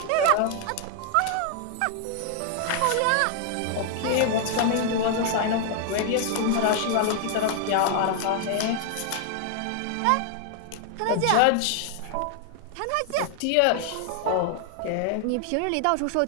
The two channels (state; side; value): different; both; correlation 0.00